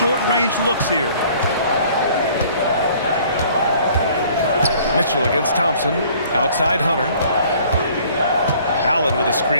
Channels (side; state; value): both; inverted; correlation -0.55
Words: looks here. Mitchell against Thompson. Outside Hunter. Allen with a